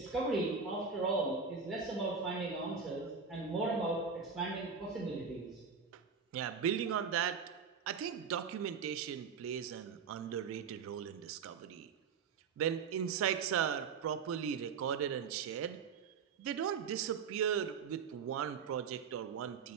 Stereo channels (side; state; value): left; quieter; 5.9 dB